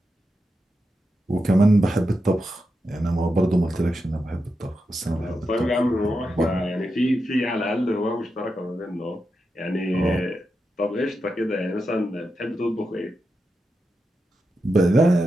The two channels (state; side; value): normal; both; correlation 0.88